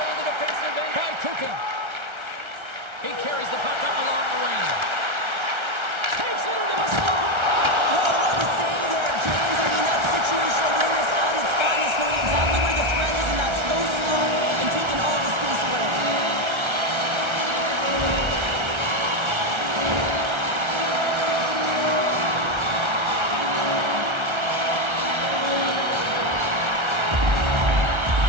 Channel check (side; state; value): left; late; 1.3 ms